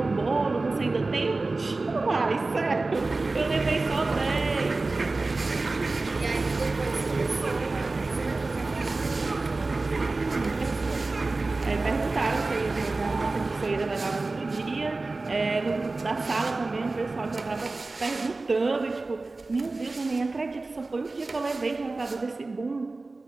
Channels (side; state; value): left; quieter; 3.4 dB